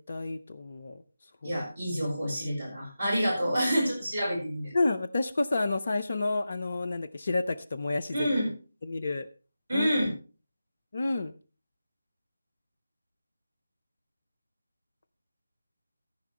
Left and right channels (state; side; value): inverted; both; correlation -0.92